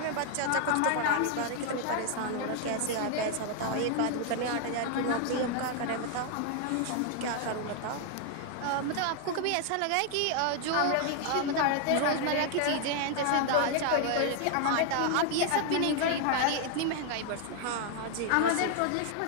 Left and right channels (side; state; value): both; different; correlation 0.00